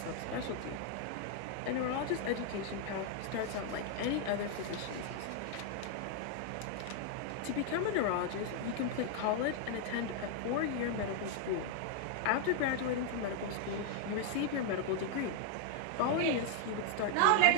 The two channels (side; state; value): both; different; correlation 0.00